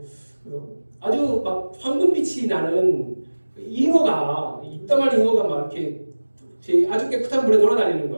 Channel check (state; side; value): inverted; both; correlation -1.00